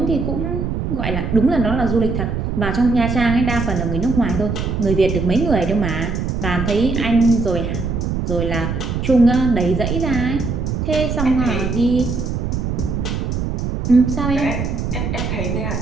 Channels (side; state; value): right; noise; rumble, 2 dB below the sound